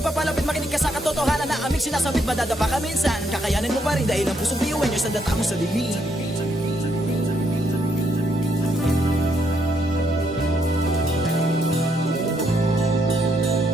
makinig ka sa katotohanan na aming sinasabit. Madadapa ka minsan, kakayanin mo pa rin dahil ang pusong biyuan nyo sa data mo sa dilim.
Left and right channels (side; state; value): both; normal; correlation 0.75